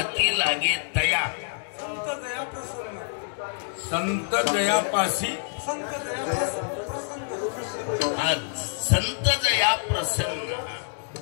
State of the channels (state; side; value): silent; right; digital silence